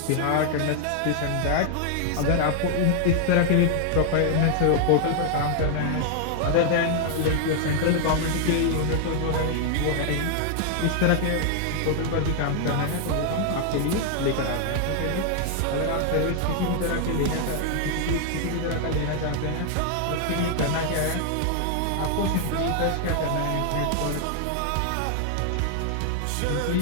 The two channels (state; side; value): different; both; correlation 0.00